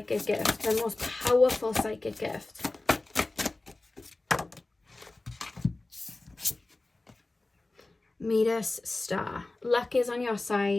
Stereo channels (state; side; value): quieter; right; 3.0 dB